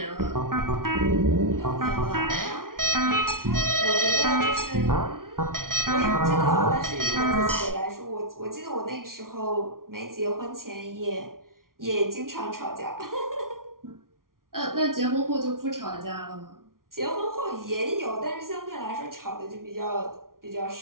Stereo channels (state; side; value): late; left; 0.92 ms